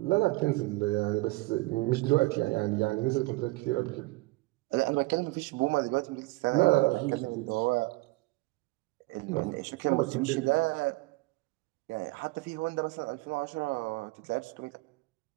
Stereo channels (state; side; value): quieter; left; 22.4 dB